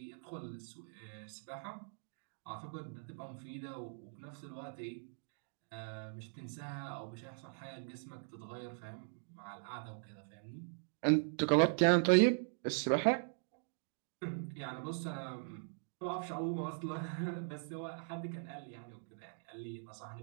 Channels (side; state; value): left; silent; digital silence